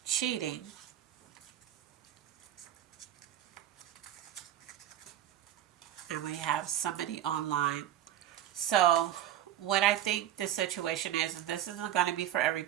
cheating. And we have somebody online. So what I think the situation is, and this isn't going to be for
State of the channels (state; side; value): quieter; left; 11.5 dB